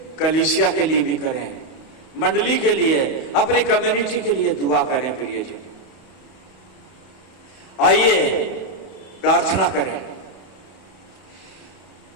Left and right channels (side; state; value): right; late; 31 ms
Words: कलीसिया के लिए भी करें, मंडली के लिए, अपनी कम्युनिटी के लिए दुआ करें। प्रियजन आइए प्रार्थना करें।